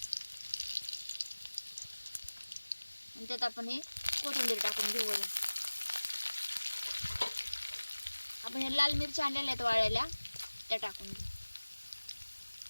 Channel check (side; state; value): both; inverted; correlation -1.00